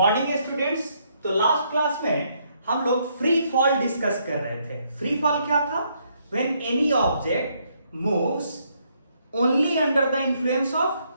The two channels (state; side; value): inverted; both; correlation -0.72